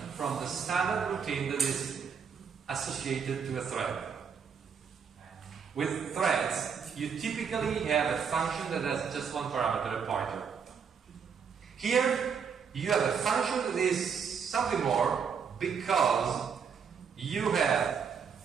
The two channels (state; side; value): quieter; left; 6.6 dB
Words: from the standard routine that is associated to a thread. With threads, you typically have a function that has just one parameter, a pointer. Here, you have a function that is something more because you have